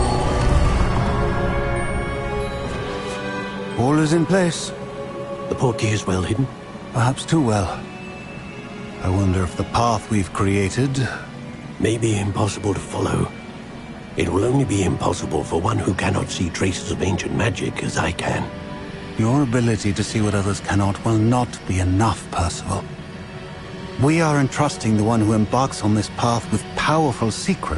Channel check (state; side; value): identical; both; correlation 1.00